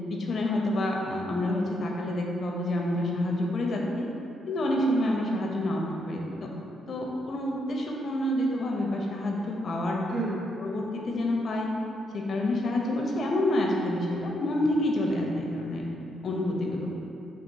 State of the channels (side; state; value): both; normal; correlation 0.77